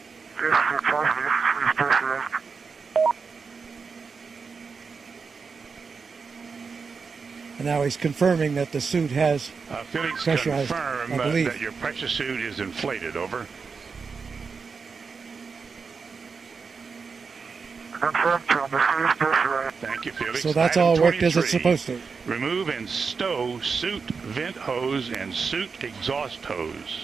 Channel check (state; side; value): quieter; left; 5.2 dB